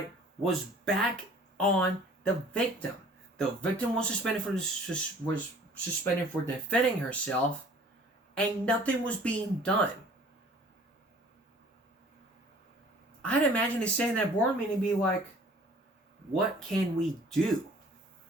was back on the victim. The victim was suspended for defending herself, and nothing was being done. I'd imagine they say in that board meeting, be like, what can we do?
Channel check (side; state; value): both; normal; correlation 0.51